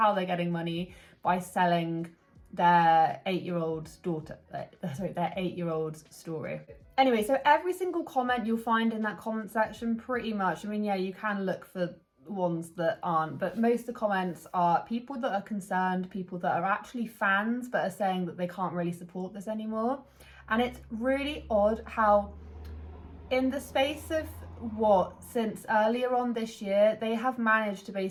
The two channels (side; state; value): both; identical; correlation 1.00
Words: they're getting money, by selling their 8-year-old's daughter, their 8-year-old's story. Anyway, so every single comment you'll find in that comment section, pretty much, I mean, yeah, you can look for ones that aren't, but most of the comments are people that are concerned, people that are actually fans but are saying that they can't really support this anymore. And it's really odd how in the space of since earlier on this year, they have managed to